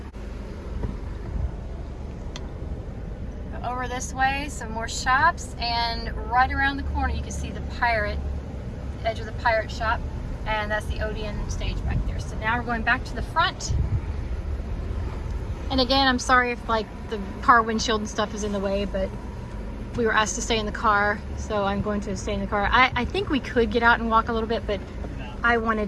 Go over this way, some more shops, and right around the corner you can see the edge of the pirate shop, and that's the Odeon stage back there. So now we're going back to the front. And again, I'm sorry if like the car windshield and stuff is in the way, but we were asked to stay in the car, so I'm going to stay in the car. I think we could get out and walk a little bit, but I wanted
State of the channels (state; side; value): identical; both; correlation 1.00